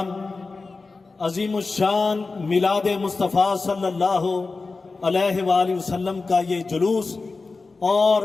عظیم الشان میلاد مصطفیٰ صلی اللہ علیہ وآلہ وسلم کا یہ جلوس اور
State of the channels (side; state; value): right; quieter; 3.9 dB